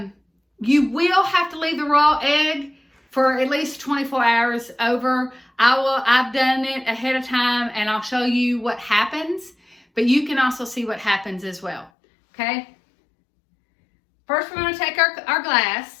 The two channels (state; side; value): drops out; right; at 11.9 s